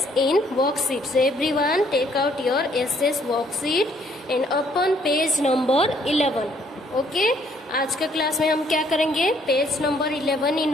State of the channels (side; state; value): both; normal; correlation 0.65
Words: in worksheet. So everyone take out your SS worksheet and open page number 11. Okay आज का class में हम क्या करेंगे, page number 11 in